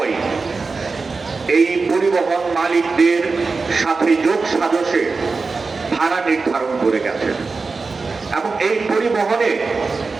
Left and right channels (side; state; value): left; quieter; 4.2 dB